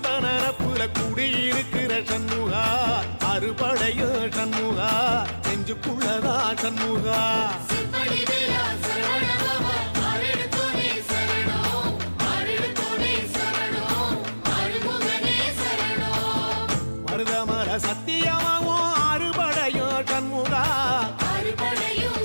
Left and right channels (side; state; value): both; inverted; correlation -1.00